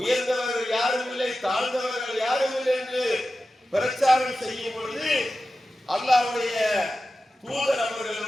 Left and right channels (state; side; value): normal; both; correlation 0.93